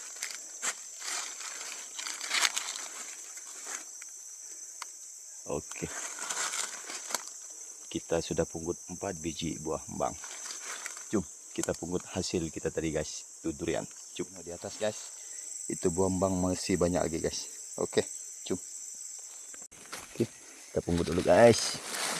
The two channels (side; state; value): both; identical; correlation 1.00